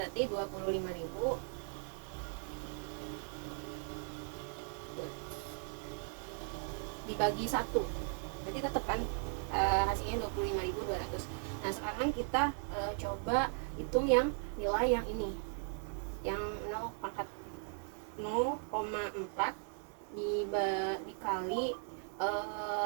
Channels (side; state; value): left; silent; 53 dB below the other